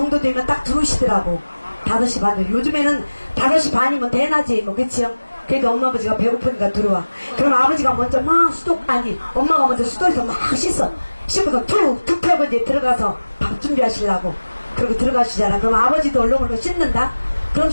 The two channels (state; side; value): inverted; both; correlation -1.00